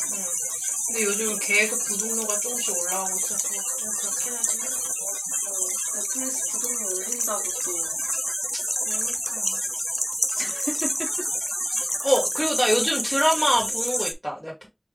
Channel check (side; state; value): both; identical; correlation 1.00